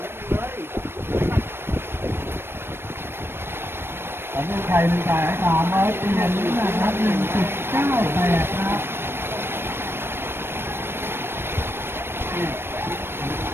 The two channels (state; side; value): late; left; 0.11 ms